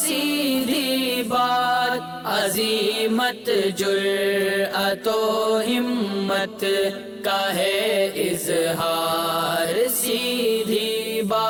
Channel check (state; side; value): identical; both; correlation 1.00